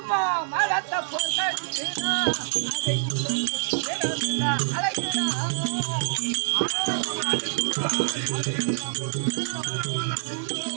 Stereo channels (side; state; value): left; silent; digital silence